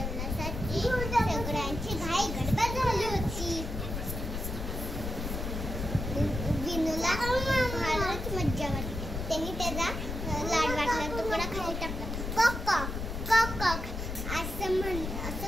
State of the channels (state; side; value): noise; left; rumble, 5 dB below the sound